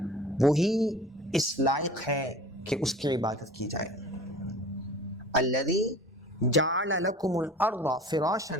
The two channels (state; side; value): normal; both; correlation 0.42